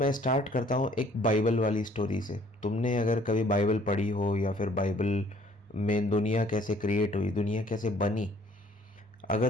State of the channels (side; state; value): both; normal; correlation 0.59